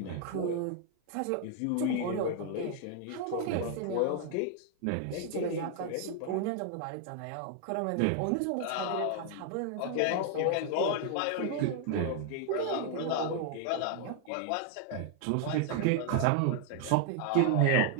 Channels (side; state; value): both; different; correlation 0.00